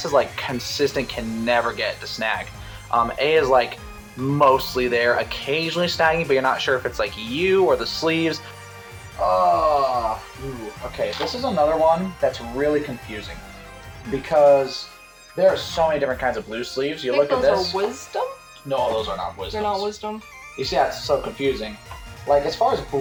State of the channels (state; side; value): identical; both; correlation 1.00